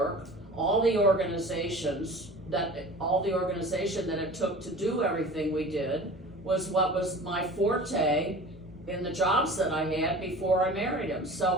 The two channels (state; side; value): normal; both; correlation 0.39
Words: all the organization that it took to do everything we did was what was my forte in the jobs that I had before I married him.